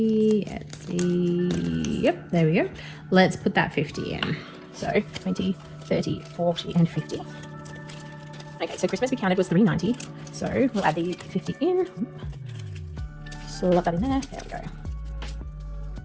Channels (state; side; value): identical; both; correlation 1.00